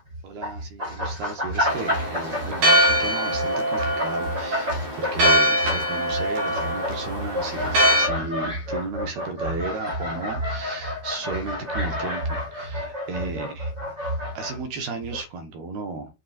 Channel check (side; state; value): left; late; 13 ms